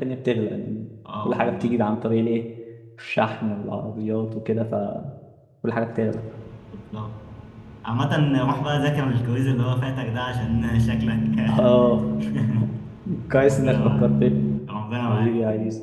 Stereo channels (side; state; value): both; identical; correlation 1.00